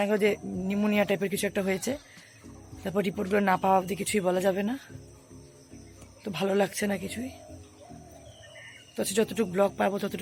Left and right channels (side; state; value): both; identical; correlation 1.00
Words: গেল যে নিউমোনিয়া টাইপের কিছু একটা হয়েছে। তারপর রিপোর্টগুলো না পাওয়া অবধি কিছুই বলা যাবে না। তো ভালো লাগছে না কিছুই। তো যতটুকু ব্লগ পাবো